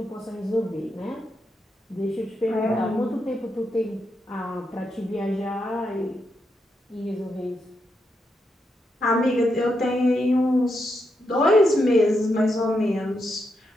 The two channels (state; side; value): normal; both; correlation 0.83